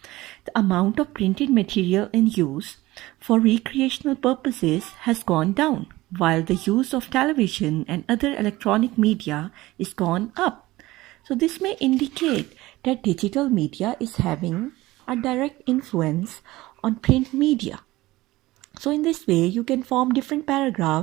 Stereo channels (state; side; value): quieter; left; 18.4 dB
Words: the amount of printed material in use for recreational purposes has gone down, while the use of television and other electronic media is gone up. So this may indicate that digital media is having a direct influence on print media. So in this way, you can form different